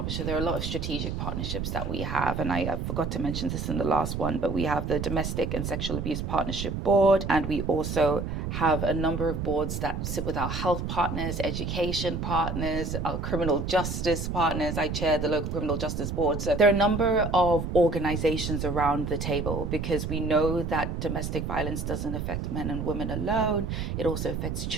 There are a lot of strategic partnerships that we have, and I forgot to mention this in the last one, but we have the Domestic and Sexual Abuse Partnership Board, and we also have a number of boards that sit with our health partners, education partners, our criminal justice partners. I chair the local criminal justice board. So there are a number of organizations around the table, because we know that domestic violence doesn't affect men and women alone. It also affects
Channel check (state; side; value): noise; right; rumble, 3 dB below the sound